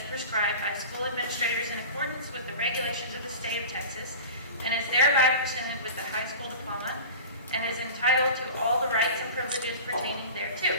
prescribed by school administrators in accordance with the regulations of the state of Texas, and is thereby presented with the high school diploma and is entitled to all the rights and privileges pertaining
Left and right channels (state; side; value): inverted; both; correlation -0.34